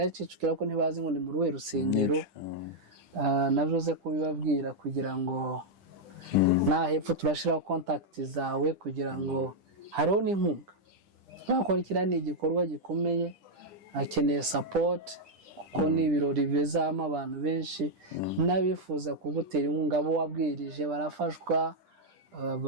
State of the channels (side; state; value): left; late; 10 ms